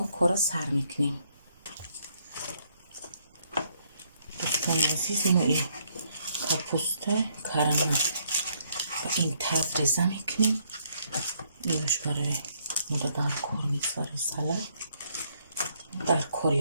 کار سر میکنیم. دوستان عزیز، ما این کپوسته کرم این تاز ریزه میکنیم. اینش برای مادر در کار میگذاره. سلام در کاری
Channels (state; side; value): inverted; both; correlation -0.70